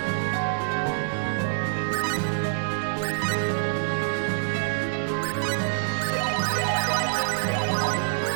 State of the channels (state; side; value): silent; left; digital silence